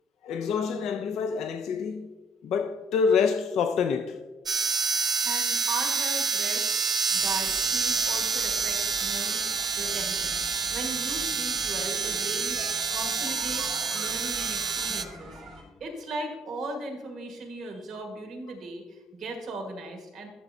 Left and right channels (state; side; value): normal; both; correlation 0.60